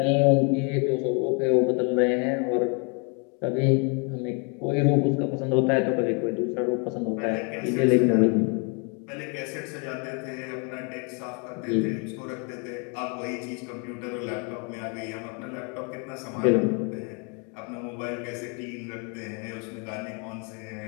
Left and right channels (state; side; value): quieter; right; 35.9 dB